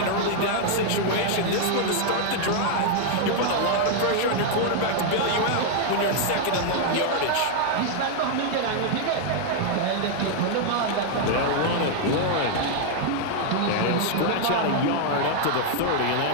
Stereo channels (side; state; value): both; different; correlation 0.00